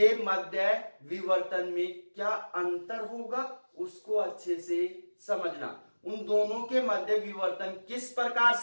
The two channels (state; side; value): inverted; both; correlation -1.00